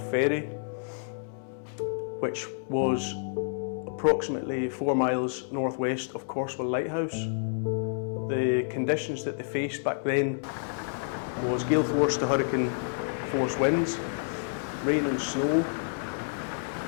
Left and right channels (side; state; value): right; silent; 58 dB below the other